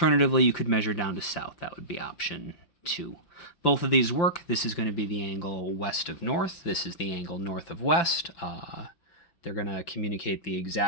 you could measure down to south. That would be option 2. Both of these work. This is going to be the angle west of north. This is the angle north of west. They're going to communicate the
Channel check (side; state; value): right; late; 5.8 ms